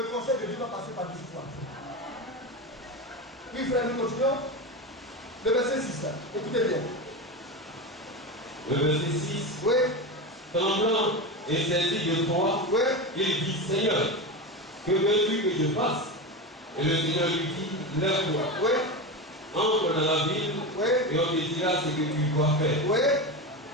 conseil de Dieu va passer par dessus toi. Oui, frère, nous continuons. Le verset 6, écoutez bien. Le verset 6. Oui. Tremblant et saisi de toi, Oui. il dit, Seigneur, que veux-tu que je fasse? Et le Seigneur lui dit, lève-toi. Oui. Entre dans la ville, Oui. et on te dira ce que tu dois faire. Oui.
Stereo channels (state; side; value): normal; both; correlation 0.21